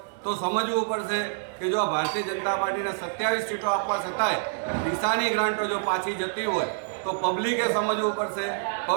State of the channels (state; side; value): silent; left; 60 dB below the other